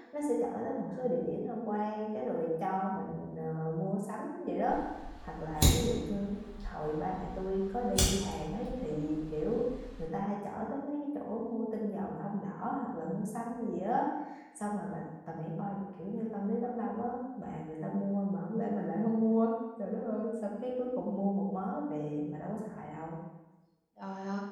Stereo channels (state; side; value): identical; both; correlation 1.00